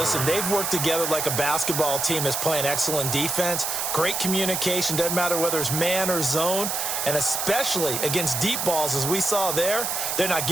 they've worked together like a basketball team that's playing excellent defense. Great communication, doesn't matter whether it's man or zone. And especially against deep balls, as we saw there, they're not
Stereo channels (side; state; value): right; noise; hiss, 1 dB below the sound